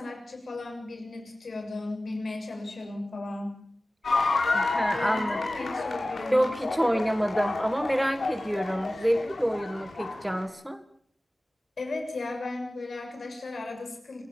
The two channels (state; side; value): normal; both; correlation 0.96